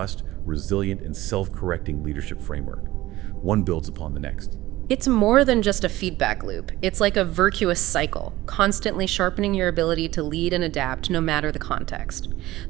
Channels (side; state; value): left; quieter; 17.1 dB